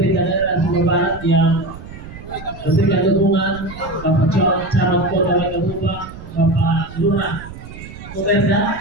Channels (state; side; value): noise; right; rumble, 14 dB below the sound